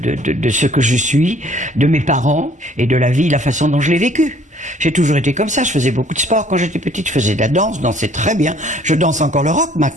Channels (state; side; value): normal; both; correlation 0.58